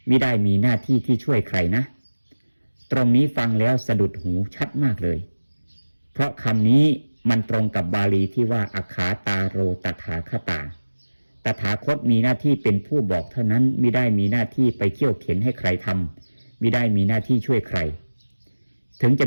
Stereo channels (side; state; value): both; inverted; correlation -1.00